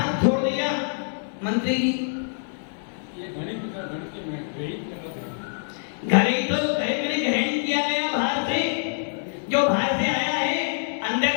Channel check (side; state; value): right; silent; 62 dB below the other